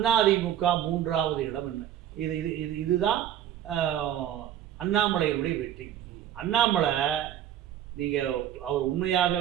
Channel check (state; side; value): quieter; left; 10.8 dB